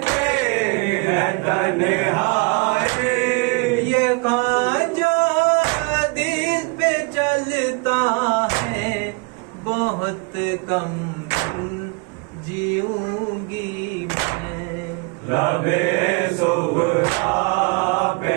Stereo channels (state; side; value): quieter; left; 28.9 dB